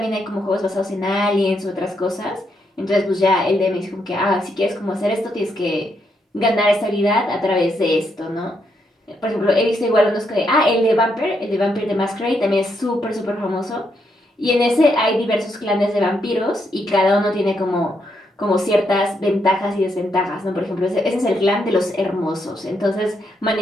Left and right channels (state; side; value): normal; both; correlation 0.78